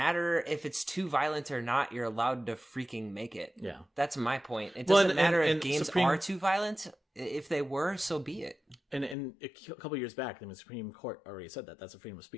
if it's too violent or not. You're allowed to freaking make it. Yeah, that's my point. It doesn't matter if games are too violent. If they were, so be it. And a couple of years back, the Supreme Court already said that that's a freedom of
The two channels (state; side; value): drops out; right; at 9.2 s